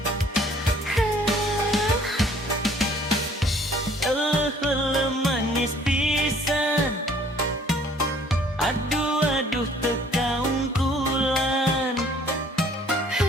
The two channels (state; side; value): normal; both; correlation 0.57